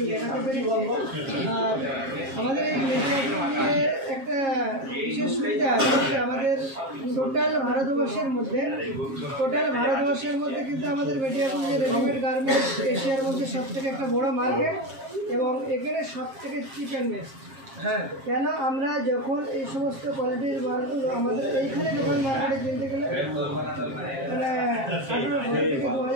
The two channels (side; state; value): left; late; 7.5 ms